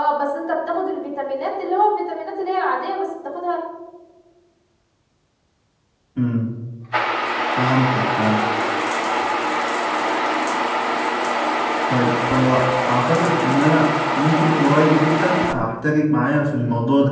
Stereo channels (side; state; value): both; identical; correlation 1.00